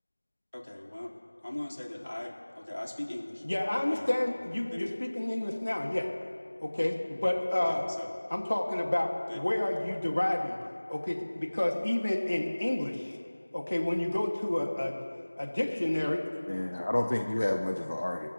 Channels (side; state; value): both; inverted; correlation -1.00